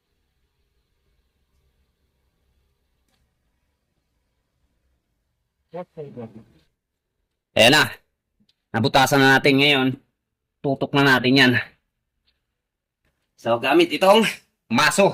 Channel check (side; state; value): both; identical; correlation 1.00